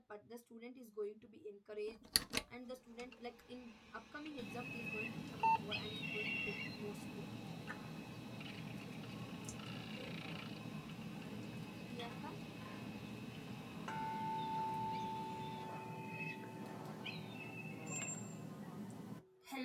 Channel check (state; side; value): identical; both; correlation 1.00